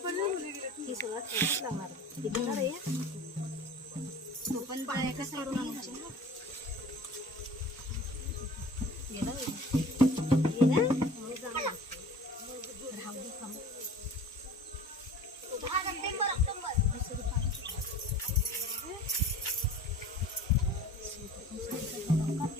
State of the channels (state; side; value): normal; both; correlation 0.42